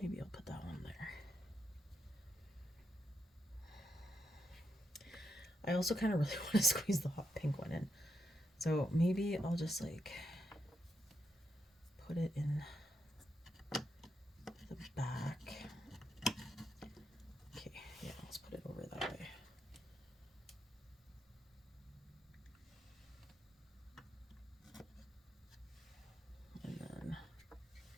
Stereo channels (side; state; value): both; normal; correlation 0.82